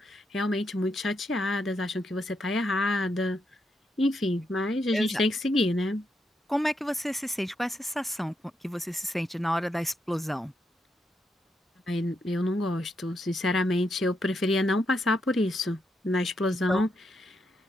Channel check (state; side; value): normal; both; correlation 0.81